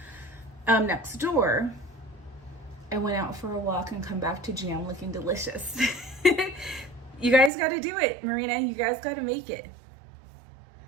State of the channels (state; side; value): drops out; left; at 7.5 s